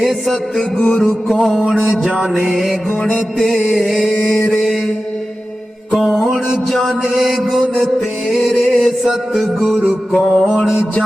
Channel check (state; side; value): normal; both; correlation 0.94